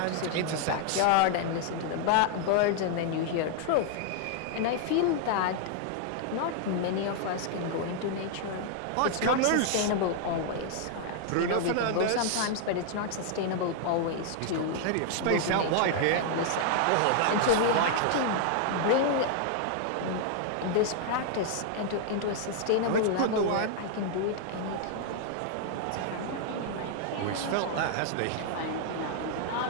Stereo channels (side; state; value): both; different; correlation 0.00